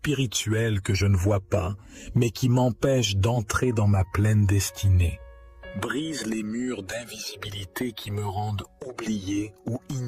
que je ne vois pas, mais qui m'empêchent d'entrer dans ma pleine destinée. Brise les murs d'invisibilité qui me rendent oublié ou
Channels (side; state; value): both; identical; correlation 1.00